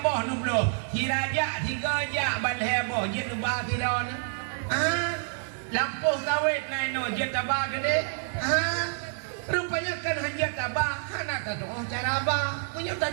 nublo, hiraja tiga jak bal heboh, jet ubah kira ni. Lampuh kawit naik no jet tabah gede. Rupanya kan hanya tabah, anak tak tahu cara apa, punya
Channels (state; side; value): silent; left; digital silence